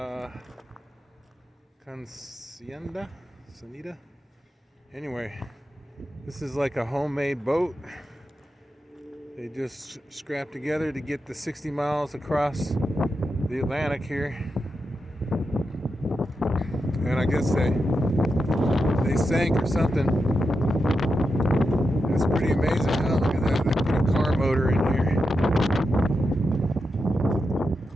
consentida. Anyway, this is like a homemade boat. They just scrapped together to get the 60 miles across the Atlantic here. And I guess they sank or something. That's pretty amazing. Oh, look at that. They put a car motor in here.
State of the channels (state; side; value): normal; both; correlation 0.88